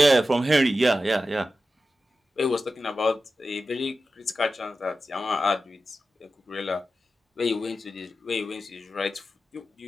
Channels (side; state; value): both; normal; correlation 0.92